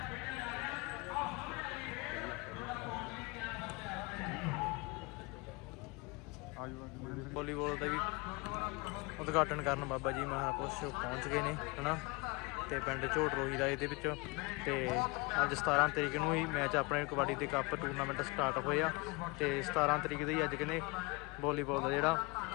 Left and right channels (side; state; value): right; quieter; 27.0 dB